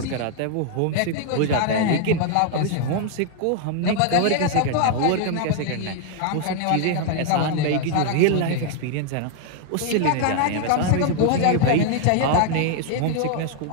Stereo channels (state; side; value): different; both; correlation 0.00